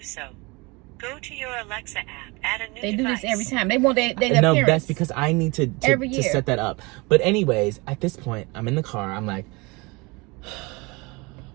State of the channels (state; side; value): quieter; left; 26.2 dB